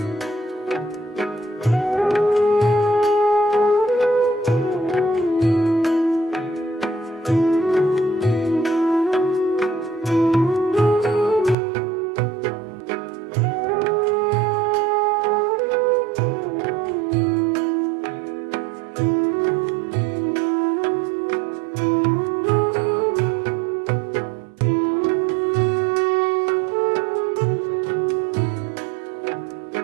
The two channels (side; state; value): left; drops out; at 11.6 s